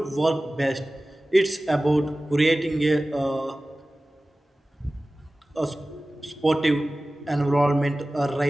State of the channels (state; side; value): normal; both; correlation 0.97